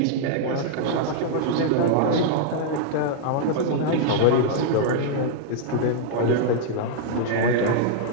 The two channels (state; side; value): different; both; correlation -0.01